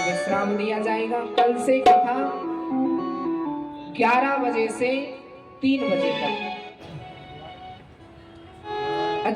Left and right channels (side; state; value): both; identical; correlation 1.00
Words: विश्राम दिया जाएगा। कल से कथा 11 बजे से 3 बजे तक।